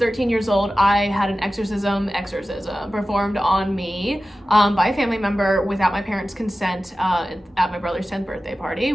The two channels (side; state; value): both; normal; correlation 0.95